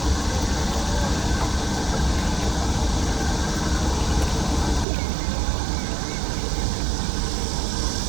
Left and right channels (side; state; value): left; drops out; at 4.9 s